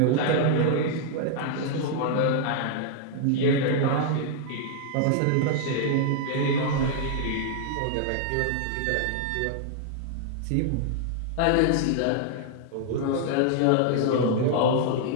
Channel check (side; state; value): both; different; correlation 0.00